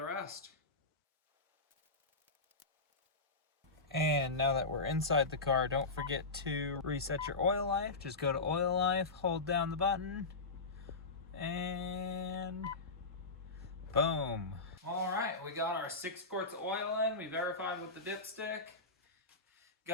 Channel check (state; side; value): quieter; right; 3.6 dB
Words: rest. And now that we're inside the car, don't forget to reset your oil life. Just go to oil life, hold down the button, and we got our 6 quarts of oil in. We verified with the dipstick.